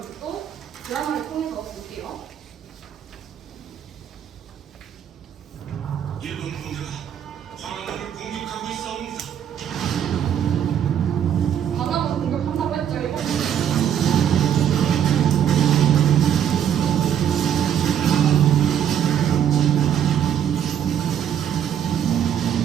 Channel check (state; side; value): quieter; left; 9.3 dB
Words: 또 드라마를 통해서 볼게요. 일본 군대가 광화문을 공격하고 있사옵니다. 광화문 공격한다고 했죠, 일본.